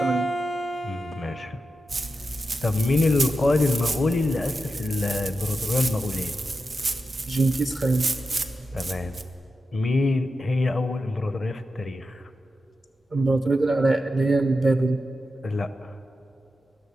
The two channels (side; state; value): both; normal; correlation 0.90